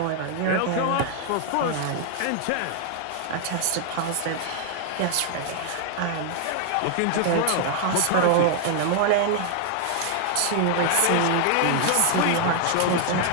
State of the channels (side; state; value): both; different; correlation 0.00